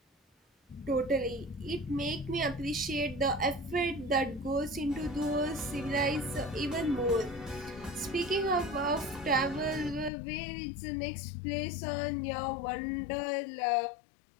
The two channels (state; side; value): drops out; right; at 10.1 s